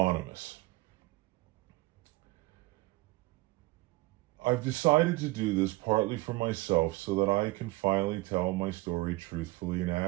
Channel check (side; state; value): left; quieter; 21.2 dB